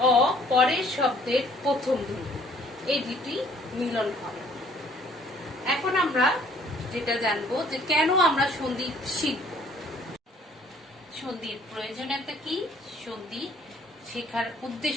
অ পরের শব্দের প্রথম ধ্বনি, এই দুটি মিলন হবে। এখন আমরা যেটা জানবো যে কেন আমরা সন্ধি শিখব, সন্ধির প্রয়োজনীয়তা কি, সন্ধি শেখার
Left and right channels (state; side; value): normal; both; correlation 0.59